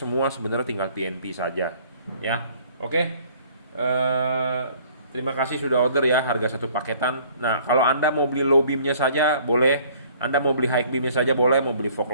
sebenarnya tinggal TNP saja ya. Oke. Terima kasih sudah order ya, harga satu paketan. Nah, kalau Anda mau beli low beamnya saja boleh, Anda mau beli high beamnya saja boleh, mau beli fog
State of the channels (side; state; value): both; inverted; correlation -0.56